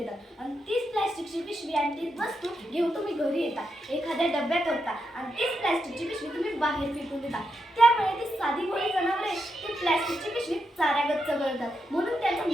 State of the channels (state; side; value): normal; both; correlation 0.84